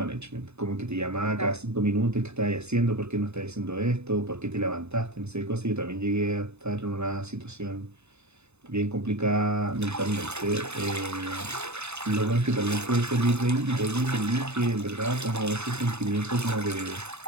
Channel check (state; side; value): late; left; 0.81 ms